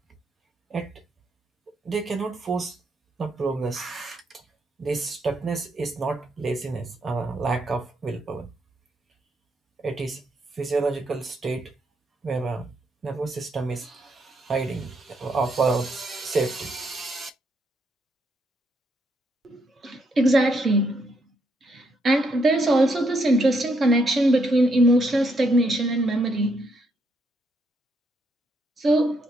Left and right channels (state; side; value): normal; both; correlation 0.76